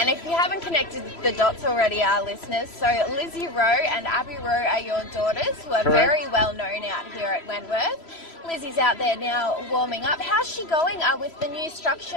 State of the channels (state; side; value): late; right; 3.0 ms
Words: if you haven't connected the dots already, our listeners, so Lizzie Rowe and Abby Rowe are your daughters, who are very well known out here at Wentworth. Lizzie's out there now warming up. How's she going with the new